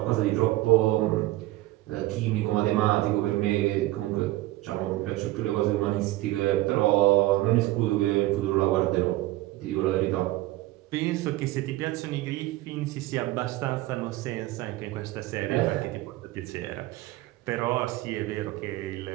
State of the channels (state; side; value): quieter; left; 17.6 dB